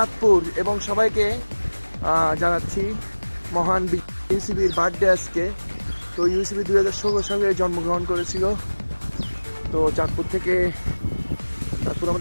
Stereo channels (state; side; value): inverted; both; correlation -1.00